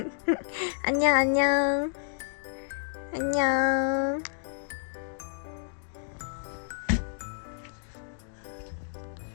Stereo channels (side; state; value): right; silent; digital silence